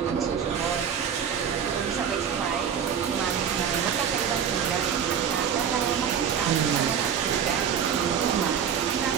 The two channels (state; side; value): quieter; left; 7.9 dB